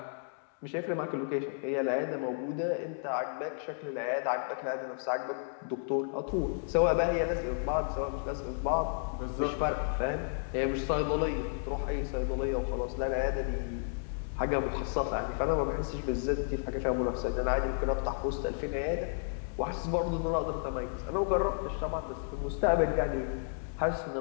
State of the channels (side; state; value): right; silent; digital silence